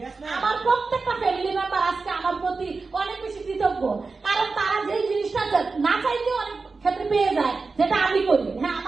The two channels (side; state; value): left; quieter; 4.2 dB